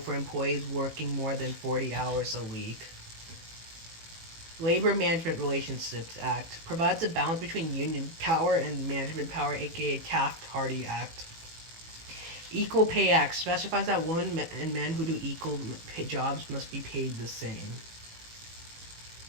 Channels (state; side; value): late; left; 18 ms